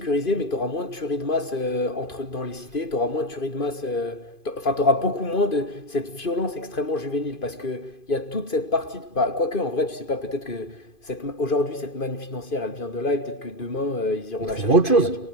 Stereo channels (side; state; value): right; late; 2.5 ms